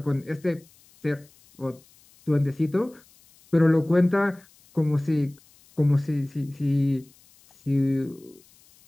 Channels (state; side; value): noise; left; hiss, 29 dB below the sound